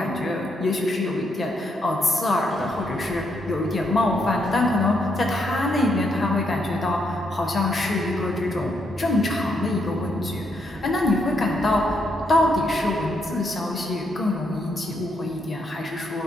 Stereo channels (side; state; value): both; normal; correlation 0.77